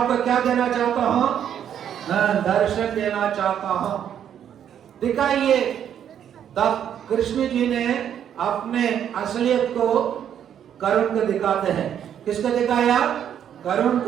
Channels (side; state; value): left; quieter; 9.4 dB